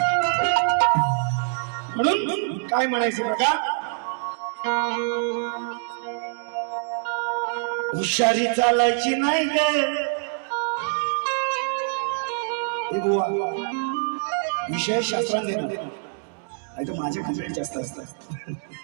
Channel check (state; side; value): silent; left; digital silence